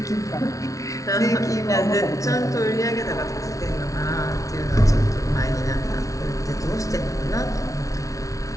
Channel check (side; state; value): right; late; 0.16 ms